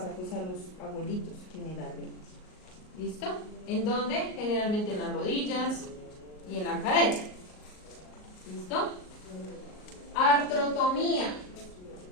pues a los abuelitos generalmente? ¿Listo? ¿En dónde? Generalmente en las rodillas y en la cadera. ¿Listo? Artrotomía.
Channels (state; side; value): late; right; 38 ms